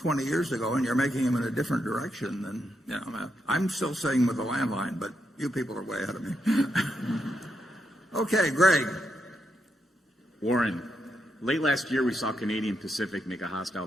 years ago, and you're making them in a different direction than, I'm still saying with the landline, but you people are way ahead of me. Okay, Greg. Warren, late last year we saw Canadian Pacific make a hostile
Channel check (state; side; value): normal; both; correlation 0.82